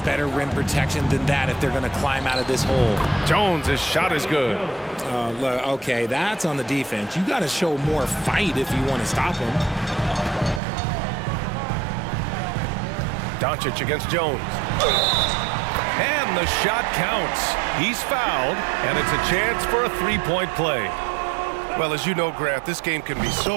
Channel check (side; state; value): left; drops out; at 10.6 s